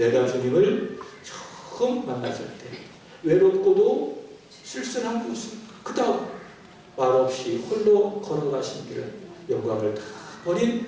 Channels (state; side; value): identical; both; correlation 1.00